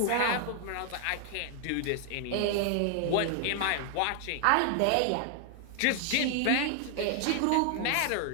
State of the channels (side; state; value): both; different; correlation 0.00